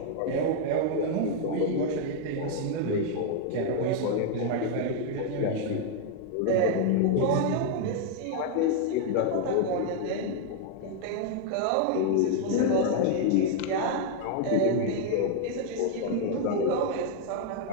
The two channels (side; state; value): both; different; correlation 0.00